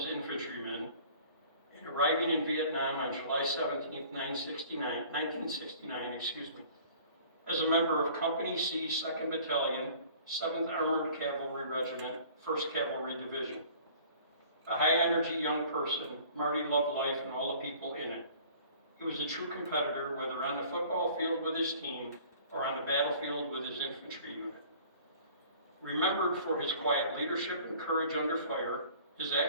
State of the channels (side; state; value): both; inverted; correlation -0.50